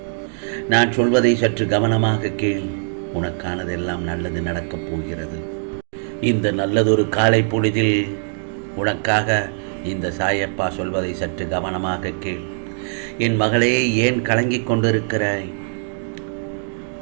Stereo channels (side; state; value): left; silent; digital silence